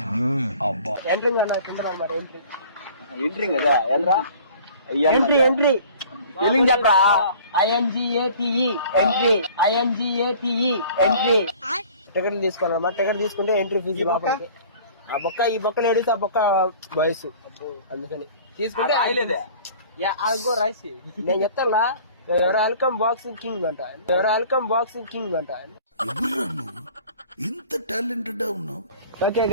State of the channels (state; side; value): inverted; both; correlation -0.48